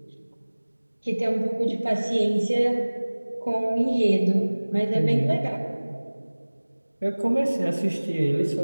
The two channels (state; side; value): inverted; both; correlation -1.00